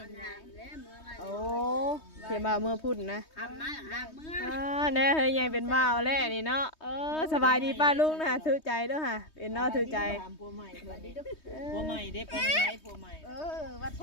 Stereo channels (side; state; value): right; late; 3.2 ms